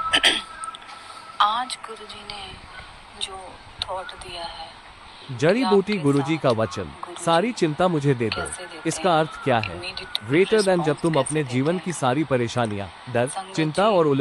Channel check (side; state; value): both; identical; correlation 1.00